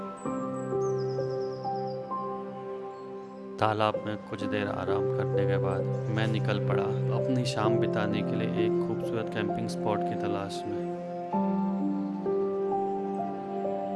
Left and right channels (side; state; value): both; identical; correlation 1.00